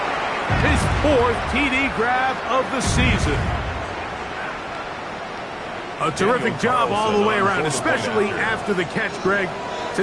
His 4th TD grab of the season. A terrific job all the way around, especially after the catch, Greg,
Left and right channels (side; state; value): both; identical; correlation 1.00